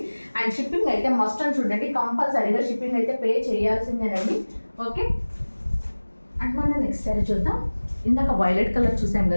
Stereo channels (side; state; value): both; inverted; correlation -1.00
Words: అండ్ షిప్పింగ్ అయితే మస్ట్ అని చూడండి, కంపల్సరీగా షిప్పింగ్ అయితే పే చేయాల్సిందేనండి. ఓకే, అండ్ మనం నెక్స్ట్ శారీ చూద్దాం. ఇందాక వైలెట్ కలర్ చూసాం